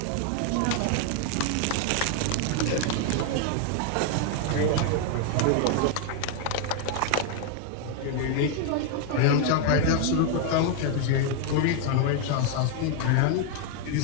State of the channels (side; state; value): both; different; correlation 0.00